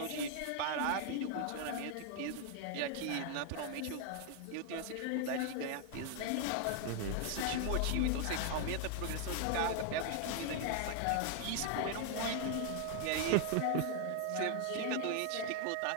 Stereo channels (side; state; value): both; different; correlation 0.00